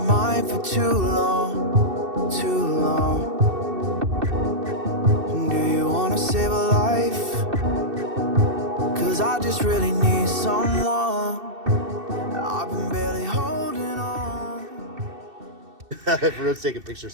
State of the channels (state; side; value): late; left; 2.7 ms